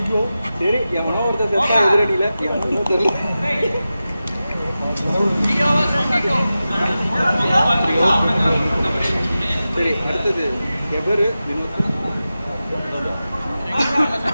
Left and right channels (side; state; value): both; inverted; correlation -0.93